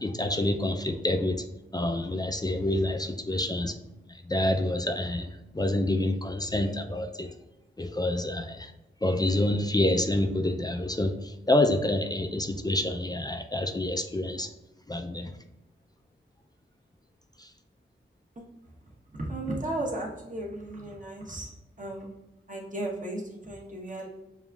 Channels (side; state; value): both; normal; correlation 0.69